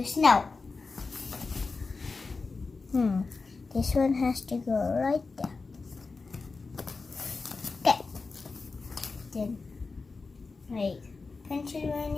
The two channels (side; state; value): right; quieter; 4.2 dB